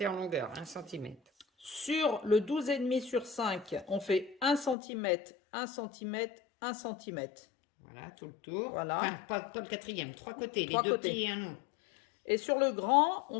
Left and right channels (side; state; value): right; drops out; at 4.8 s